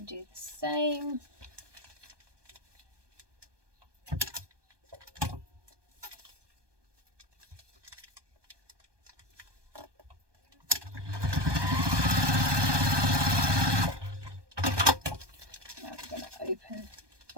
do the same. Open,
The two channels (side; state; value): left; late; 1.2 ms